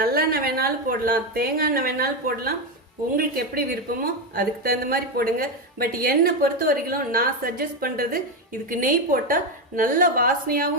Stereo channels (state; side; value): normal; both; correlation 0.10